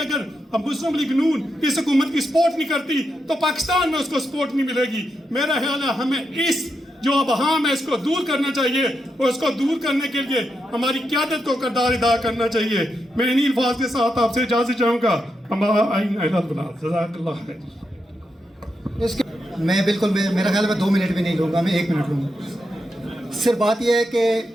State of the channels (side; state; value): both; normal; correlation 0.84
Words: हम मुस्लिम लीग नून इस हुकूमत की सपोर्ट नहीं करती तो पाकिस्तान में उसको सपोर्ट नहीं मिलेगी। मेरा ख्याल है हमें इस जो अबहाम है इसको दूर करना चाहिए, और इसको दूर करने के लिए हमारी क़यादत को किरदार अदा करना चाहिए। मैं इन्हीं अल्फाज के साथ आपसे इजाज़त चाहूँगा। मैं बिल्कुल मेरा ख्याल में 2 मिनट भी नहीं लूँगा, मैं 1 मिनट लूँगा। सिर्फ बात यह है कि